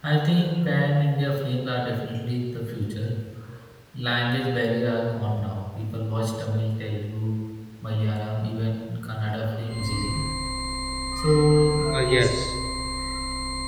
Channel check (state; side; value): identical; both; correlation 1.00